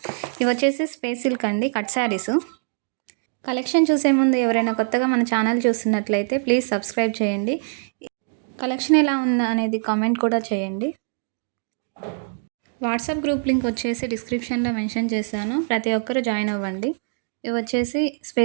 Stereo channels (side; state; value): left; silent; digital silence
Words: ఇవి వచ్చేసి స్పేస్ సిల్క్ అండి, కట్ శారీస్. కలెక్షన్ చూసే ముందు ఎవరైనా కొత్తగా మన ఛానల్ చూస్తున్నట్లయితే ప్లీజ్ సబ్స్క్రైబ్ చేయండి. కలెక్షన్ ఎలా ఉందా అనేది కామెంట్ కూడా చేయండి. వాట్సాప్ గ్రూప్ లింక్ వచ్చేసి డిస్క్రిప్షన్లో మెన్షన్ చేశాను, ప్రతి ఒక్కరు జాయిన్ అవ్వండి. ఇవి వచ్చేసి